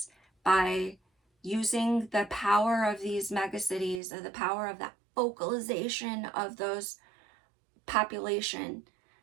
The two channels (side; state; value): left; drops out; at 4.0 s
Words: by using the power of these megacities, or the power of that focalization of those population,